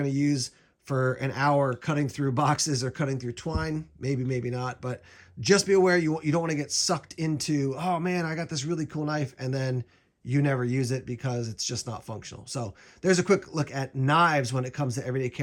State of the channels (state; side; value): identical; both; correlation 1.00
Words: to use for an hour cutting through boxes or cutting through twine? Maybe, maybe not. But just be aware you don't want to get sucked into, oh man, I got this really cool knife, and then you never use it because it's just not functional. So there's a quick look at knives when it comes to everyday